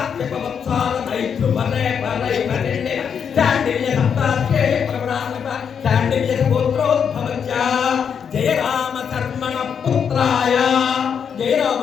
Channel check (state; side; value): quieter; right; 7.2 dB